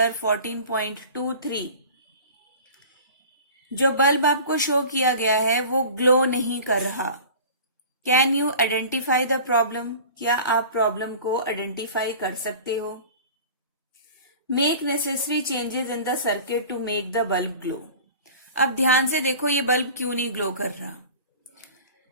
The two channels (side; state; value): both; inverted; correlation -0.40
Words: 14.23। जो बल्ब आपको शो किया गया है वो ग्लो नहीं कर रहा। Can you identify the problem? क्या आप प्रॉब्लम को आइडेंटिफाई कर सकते हो? Make necessary changes in the circuit to make the bulb glow. अब ध्यान से देखो ये बल्ब क्यों नहीं ग्लो कर रहा।